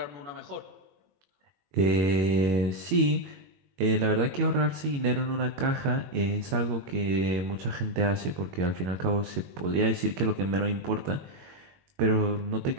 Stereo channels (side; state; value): left; late; 22 ms